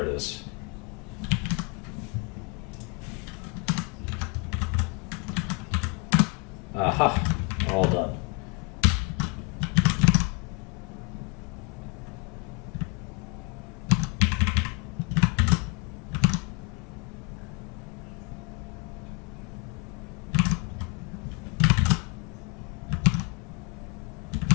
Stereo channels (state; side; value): quieter; right; 31.7 dB